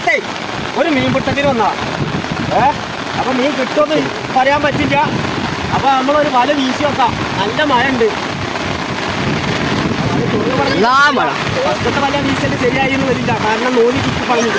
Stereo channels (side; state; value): both; identical; correlation 1.00